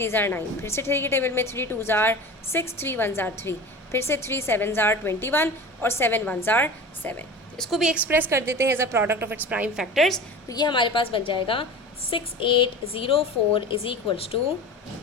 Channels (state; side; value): normal; both; correlation 0.34